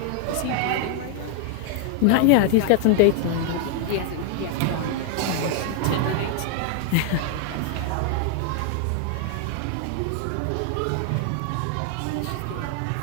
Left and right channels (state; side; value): different; both; correlation 0.00